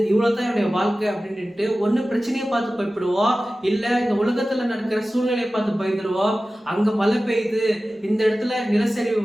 இவ்வளவுதான் என்னுடைய வாழ்க்கை அப்படின்ட்டு ஒண்ணு பிரச்சனையை பார்த்து பயப்படுவோம், இல்ல இந்த உலகத்துல நடக்கிற சூழ்நிலையை பார்த்து பயந்துருவோம். அங்க மழை பெய்யுது, இந்த இடத்துல நிலச்சரிவு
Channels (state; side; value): normal; both; correlation 0.96